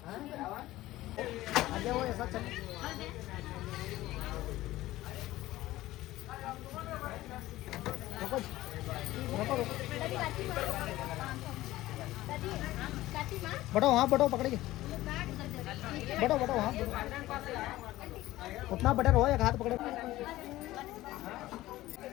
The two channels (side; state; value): right; quieter; 16.5 dB